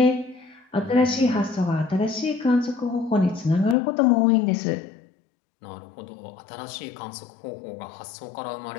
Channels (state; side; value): drops out; right; at 3.8 s